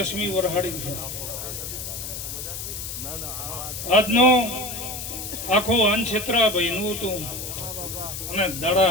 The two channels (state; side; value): noise; left; hiss, 7 dB below the sound